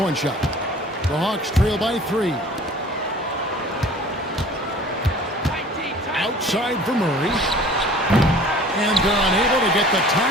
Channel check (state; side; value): normal; both; correlation 0.47